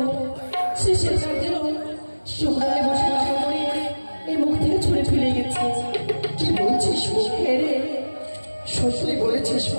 সে কাজের সকালে বসে কাকা করে এর মুখ থেকে ছুঁড়ে ফেলে গেছে। কি বলছিস? রে সত্যই বলেছিস?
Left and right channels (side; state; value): both; inverted; correlation -1.00